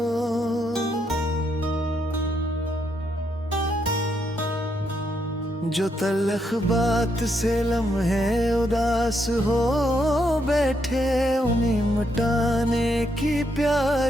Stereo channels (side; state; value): both; normal; correlation 0.77